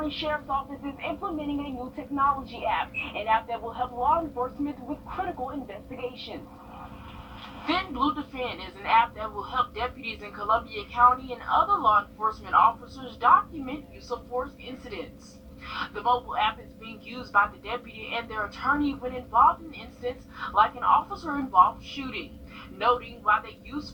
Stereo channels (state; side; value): identical; both; correlation 1.00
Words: Sheriff's Office is implementing a new technology app, an app that will help law enforcement with critical investigations. Blue Defend is an app that will help deputies in Columbia County and other law enforcement officers document use of force incidents. The mobile app is being used by the deputy and their attorney when involved in incidents like an officer-involved shooting, noting why they used